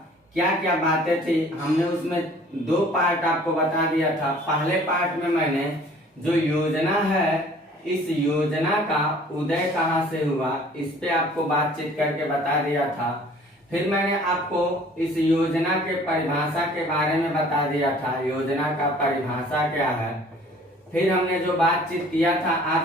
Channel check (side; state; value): both; normal; correlation 0.52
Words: क्या क्या बातें थी हमने उसमें दो पार्ट आपको बता दिया था। पहले पार्ट में मैंने जो योजना है, इस योजना का उदय कहाँ से हुआ, इस पे आपको बातचीत करके बता दिया था। फिर मैंने आपको इस योजना के परिभाषा के बारे में बता दिया था, योजना का परिभाषा क्या है। फिर हमने जो बातचीत किया था